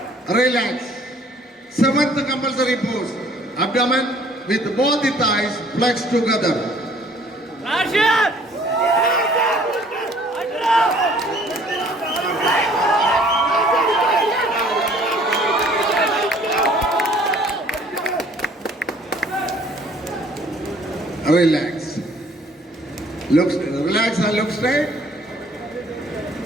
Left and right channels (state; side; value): normal; both; correlation 0.57